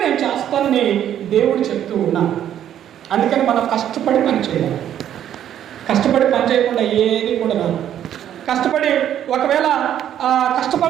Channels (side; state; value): left; quieter; 10.6 dB